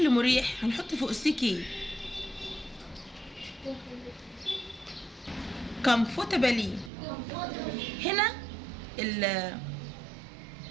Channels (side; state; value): left; drops out; at 6.9 s